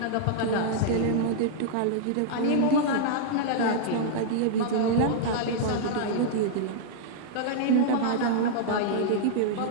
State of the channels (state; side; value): different; both; correlation -0.01